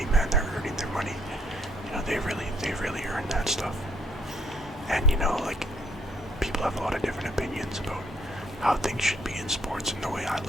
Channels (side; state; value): both; normal; correlation 0.68